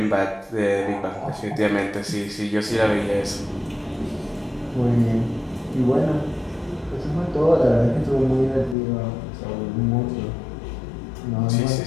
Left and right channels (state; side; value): drops out; right; at 8.8 s